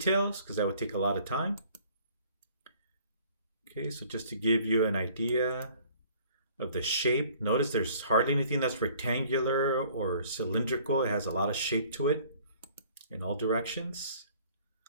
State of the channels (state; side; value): inverted; both; correlation -0.55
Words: because that would take a lot of time. Okay, so just to give you an idea of the shape, notice there's hardly anything that's rectangular or cylindrical. It has a lot of shape to it in all directions.